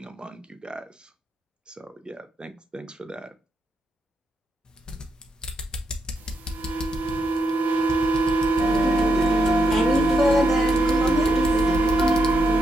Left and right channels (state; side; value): normal; both; correlation 0.81